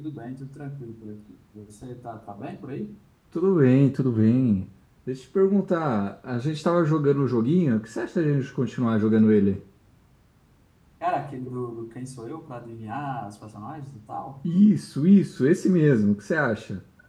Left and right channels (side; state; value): both; identical; correlation 1.00